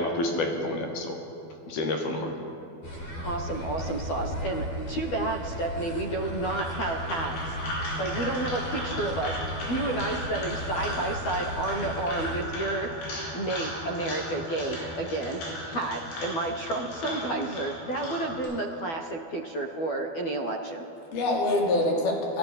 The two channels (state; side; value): late; right; 12 ms